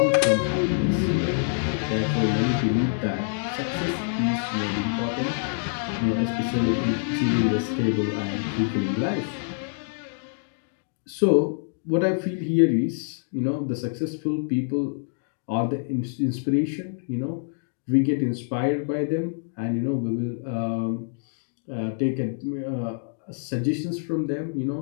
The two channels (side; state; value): right; silent; digital silence